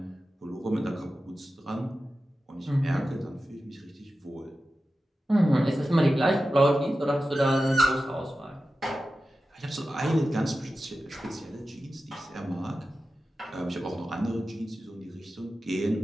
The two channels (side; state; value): both; normal; correlation 0.93